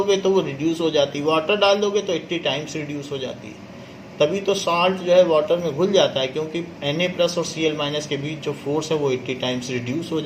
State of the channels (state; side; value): identical; both; correlation 1.00